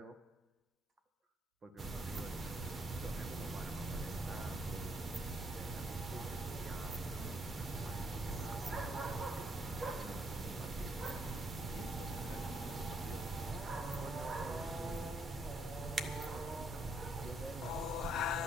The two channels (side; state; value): both; normal; correlation 0.72